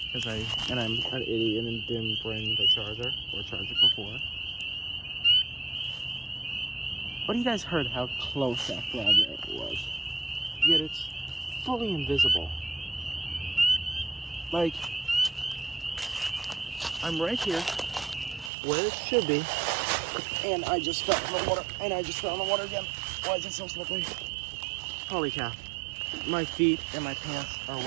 I'm an idiot and didn't bring the charger or charge it before. But you guys heard how close that frog was. Yet it's fully invisible. Like, I'm right here, where it should be, and I just fell in the water, again. Why is it so slippery? Holy cow. My feet and my pants are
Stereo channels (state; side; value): drops out; left; at 18.5 s